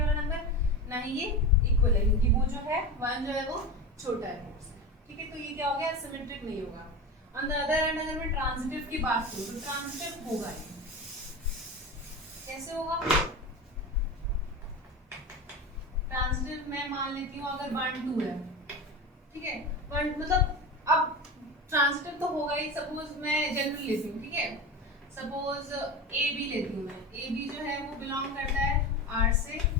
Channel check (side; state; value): both; normal; correlation 0.25